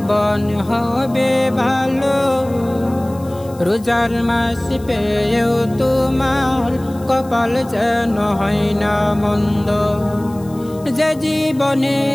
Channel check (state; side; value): noise; left; hiss, 24 dB below the sound